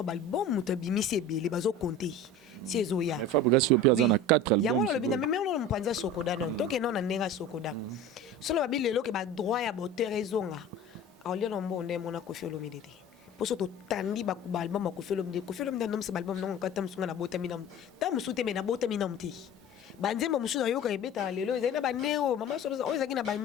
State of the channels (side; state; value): both; normal; correlation 0.36